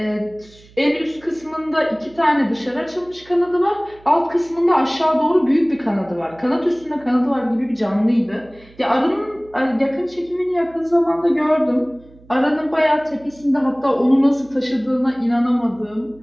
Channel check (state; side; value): noise; right; hum, 25 dB below the sound